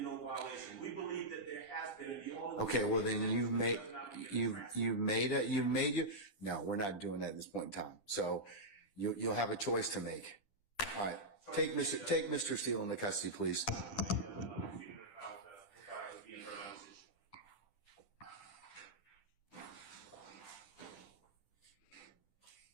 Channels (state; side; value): late; right; 10 ms